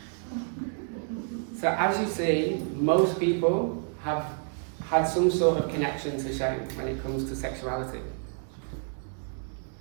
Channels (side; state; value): left; silent; 55 dB below the other